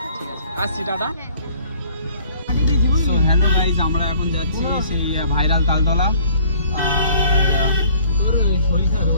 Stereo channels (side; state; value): both; inverted; correlation -0.56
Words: ঠিক আছে, আসছি, টাটা। তো হ্যালো গাইজ, আমরা এখন যাচ্ছি সেই ভাইরাল তালতলা।